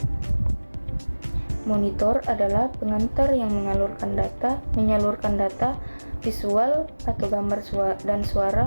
Monitor adalah pengantar yang menyalurkan data visual atau gambar dan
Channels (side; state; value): both; inverted; correlation -1.00